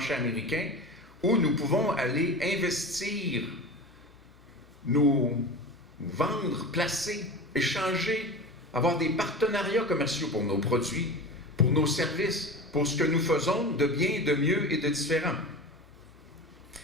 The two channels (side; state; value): both; normal; correlation 0.30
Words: américain, où nous pouvons aller investir, nous vendre, placer, échanger, avoir des partenariats commerciaux pour nos produits, pour nos services, pour ce que nous faisons de bien, de mieux et de différent.